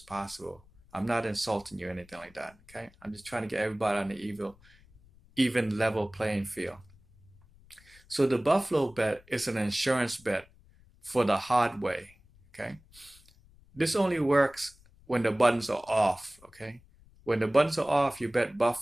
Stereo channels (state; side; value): noise; left; rumble, 27 dB below the sound